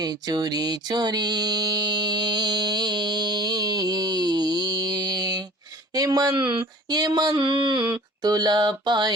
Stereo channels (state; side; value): normal; both; correlation 0.46